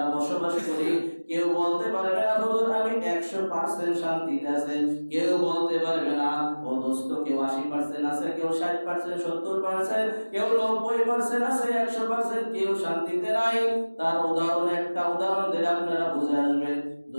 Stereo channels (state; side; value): inverted; both; correlation -1.00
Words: বসবাস করি, কেউ বলতে পারবে না হুজুর আমি 100% শান্তিতে আছে, কেউ বলতে পারবে না। ও দোস্ত, কেউ 80% আছে, কেউ 60%, 70%, কেউ 90% আছে, 100% কেউ শান্তিতে নাই। তার উদাহরণ একটা উদাহরণ দিলে আপনারা বুঝে আসবেন।